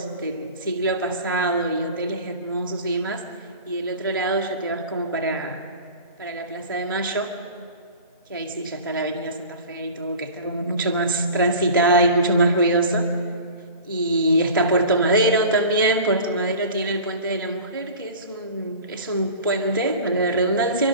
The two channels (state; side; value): inverted; both; correlation -0.39